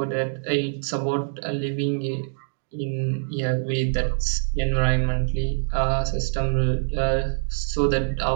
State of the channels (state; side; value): silent; left; digital silence